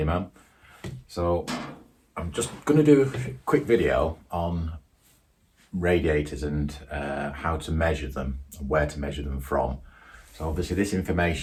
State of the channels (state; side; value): identical; both; correlation 1.00